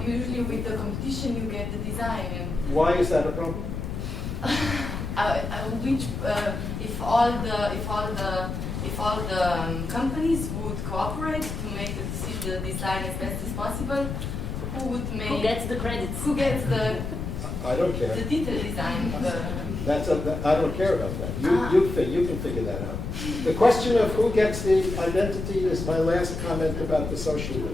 usually with the competition you get the design and Why is that a problem? if all the companies would cooperate to make the design as best as possible, who would make? Who gets the credits? Who gets the I don't care. detailed design? I don't care about that. You can figure that out. The question of who gets the identity is my last comment about the social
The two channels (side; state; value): left; noise; rumble, 5 dB below the sound